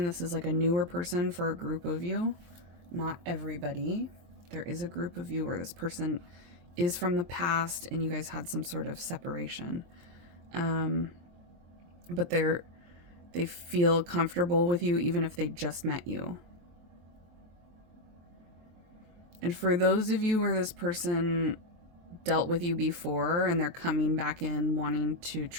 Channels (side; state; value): left; late; 23 ms